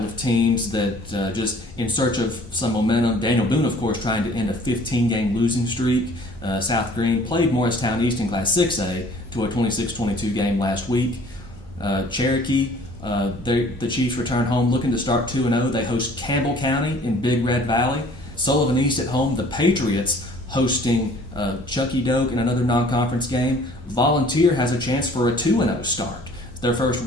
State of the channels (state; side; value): normal; both; correlation 0.53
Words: of teams that just in search of some momentum. Daniel Boone, of course, trying to end a 15-game losing streak. South Green played Morristown East in Class 6A to a 26-22 game last week. Cherokee, the Chiefs return home looking to start 2-0. They host Campbell County in Big Red Valley. Sullivan East at home. The Patriots hosting Chucky Doak in another non-conference game. Volunteer has a chance for a 2-0 start. Their first